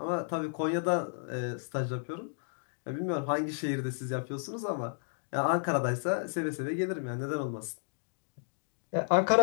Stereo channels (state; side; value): silent; right; digital silence